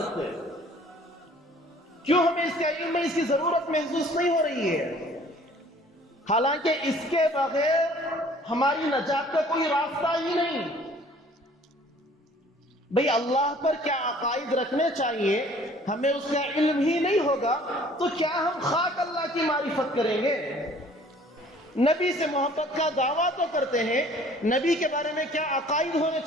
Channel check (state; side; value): normal; both; correlation 0.53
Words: کیوں ہمیں اس کا علم میں اس کی ضرورت محسوس نہیں ہو رہی ہے؟ حالانکہ اس کے بغیر ہماری نجات کا کوئی راستہ ہی نہیں۔ بھئی اللہ پر کیا عقائد رکھنے چاہیے، ہمیں اس کا علم ہی نہیں ہوگا تو کیا ہم خاک اللہ کی معرفت کریں گے؟ نبی سے محبت کا دعویٰ تو کرتے ہیں، نبی کے بارے میں کیا عقائد ہونے